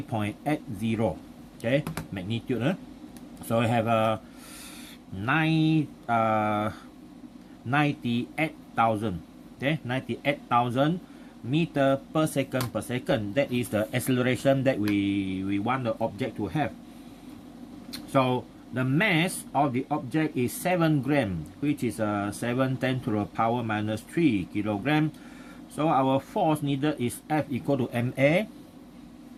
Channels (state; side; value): identical; both; correlation 1.00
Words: Okay, magnitude. So we have a 98,000. Okay, 98,000 meter per second per second. That is the acceleration that we want the object to have. So the mass of the object is 7 gram, which is 7 10 to the power minus 3 kilogram. So our force needed is F equal to ma,